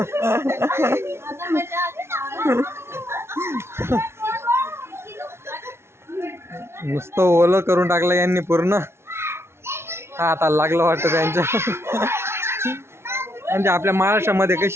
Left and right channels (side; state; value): left; late; 0.12 ms